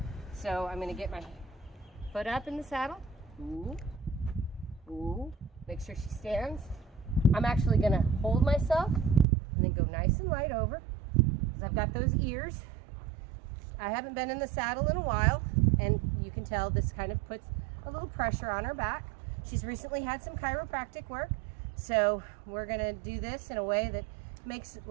so I'm going to get my foot up in the saddle. Ooh, ooh. Make sure she stands. I'm actually going to hold myself and then go nice and light over, because I've got those ears. I haven't been in the saddle in a while, and you can tell this kind of puts a little pressure on her back. She's recently had some chiropractic work, so we're going to do this in a way that makes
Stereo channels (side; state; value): left; drops out; at 9.2 s